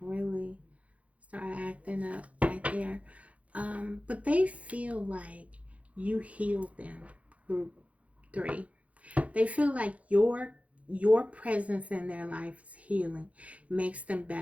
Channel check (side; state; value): left; late; 0.066 ms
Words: really started acting up right there. But they feel like you heal them, group 3. They feel like your presence in their life is healing, makes them